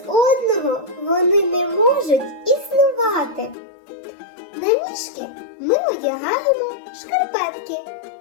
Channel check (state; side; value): drops out; right; at 3.6 s